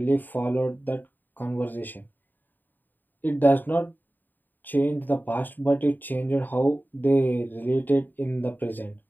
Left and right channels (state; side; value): late; right; 0.090 ms